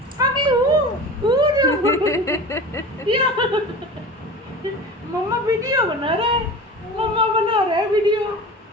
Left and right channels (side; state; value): both; normal; correlation 0.34